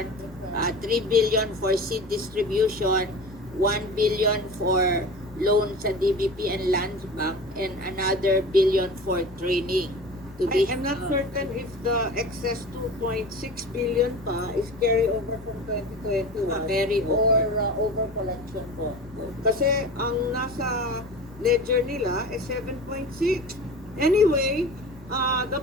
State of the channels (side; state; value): both; normal; correlation 0.35